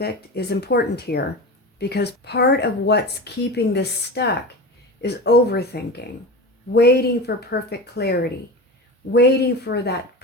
is important here, because part of what's keeping this stuck is overthinking, waiting for perfect clarity, waiting for that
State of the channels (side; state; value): both; normal; correlation 0.28